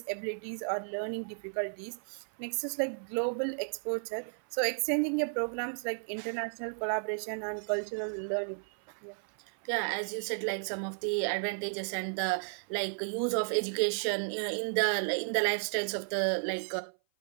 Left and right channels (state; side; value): silent; left; 55 dB below the other